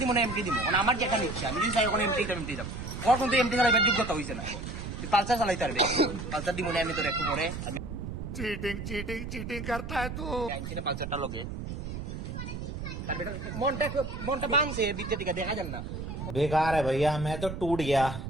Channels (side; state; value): right; noise; rumble, 7 dB below the sound